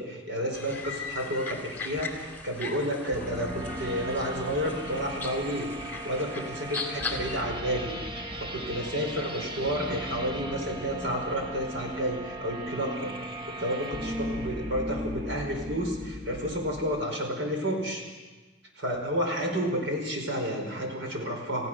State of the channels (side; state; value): both; normal; correlation 0.04